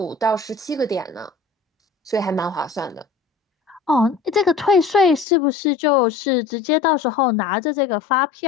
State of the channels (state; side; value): drops out; right; at 5.2 s